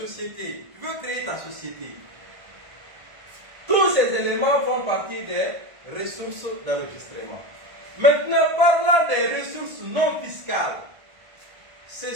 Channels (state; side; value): late; left; 1.5 ms